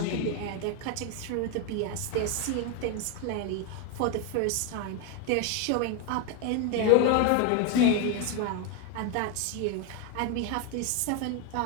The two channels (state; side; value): different; both; correlation 0.01